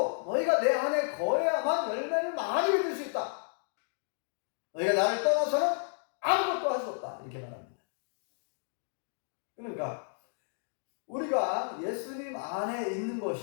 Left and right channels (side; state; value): right; silent; digital silence